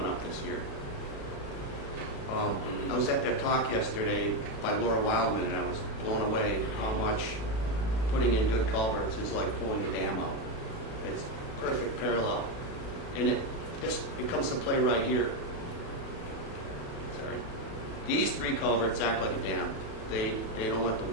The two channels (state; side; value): late; right; 36 ms